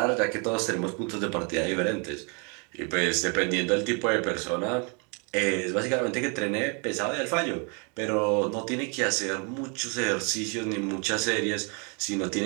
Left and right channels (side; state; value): left; quieter; 34.9 dB